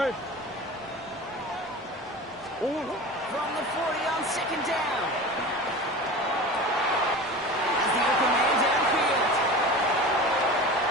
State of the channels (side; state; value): both; normal; correlation 0.34